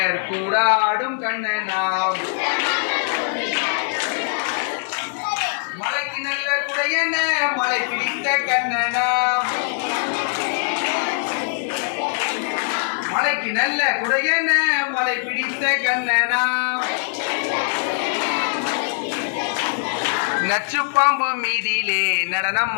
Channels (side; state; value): right; silent; 64 dB below the other